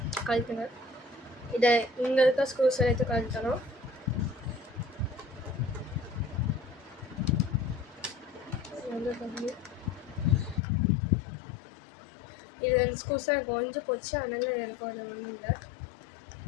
கழட்டுங்க. இதை இங்கே இருக்க ஸ்க்ரூஸ் எடுத்து கழட்டணும். இது 2 ஸ்க்ரூஸ் எனக்கு ஒழிஞ்சு போச்சு, அதனால எனக்கு ஒரு ஒன்றும் இல்லை.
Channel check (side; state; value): right; drops out; at 10.6 s